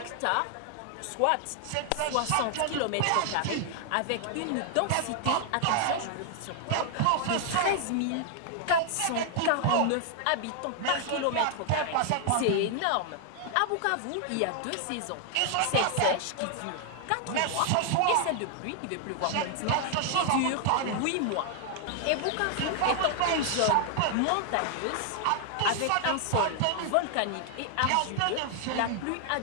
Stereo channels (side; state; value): both; different; correlation 0.00